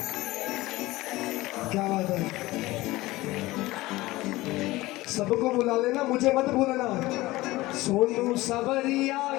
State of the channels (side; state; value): right; quieter; 19.0 dB